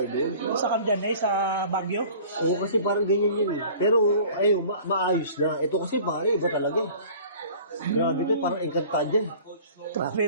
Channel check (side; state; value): both; inverted; correlation -0.46